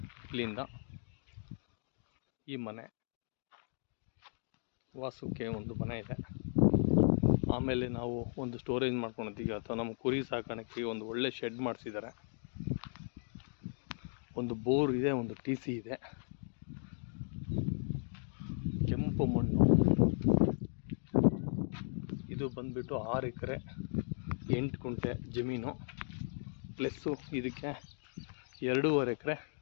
ಇಲ್ಲಿಂದ ಈ ಮನೆ ವಾಸಕ್ಕೆ ಒಂದು ಮನೆ ಇದೆ. ಆಮೇಲೆ ನಾವು ಒಂದು ಸ್ಟೋರೇಜ್ ಮಾಡ್ಕೊಂಡಿದ್ದೀವಿ, ಅಥವಾ ನಮ್ಮ ಕುರಿ ಸಾಕಾಣಿಕೆ ಒಂದು ಒಳ್ಳೆ ಶೆಡ್ ಮಾಡಿಸಿದ್ದಾರೆ. ಒಂದು ಬೋರ್ ಇದೆ, ಒಂದು TC ಇದೆ. ಕೆಂಪು ಮಣ್ಣು. ಇದು ಬಂದ್ಬಿಟ್ಟು 6 ಎಕರೆ 8 ಗುಂಟೆ ಜಮೀನು, ಪ್ಲಸ್ಸು ಇದಕ್ಕೆ 2.5 ಎಕರೆ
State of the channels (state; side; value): silent; right; 53 dB below the other